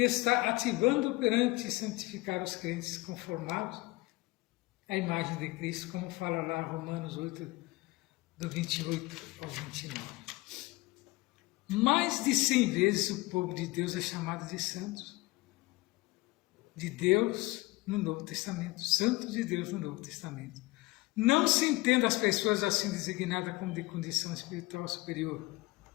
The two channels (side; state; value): right; quieter; 21.3 dB